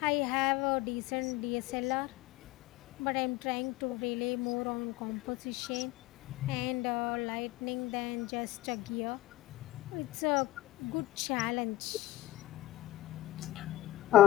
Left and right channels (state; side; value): quieter; right; 16.3 dB